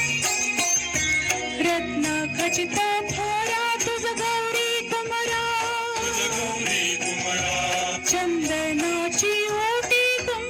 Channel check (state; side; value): identical; both; correlation 1.00